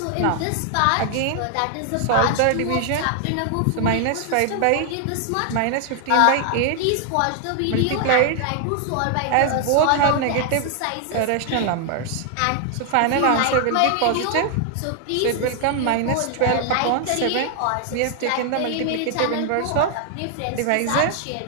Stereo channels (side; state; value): both; different; correlation 0.00